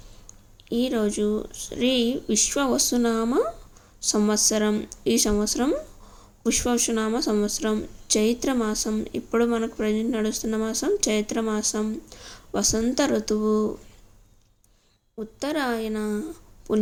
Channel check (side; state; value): both; identical; correlation 1.00